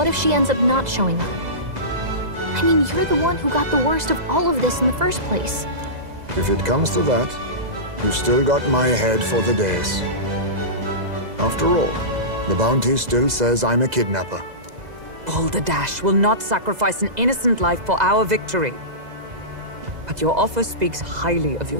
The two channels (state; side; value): late; left; 2.0 ms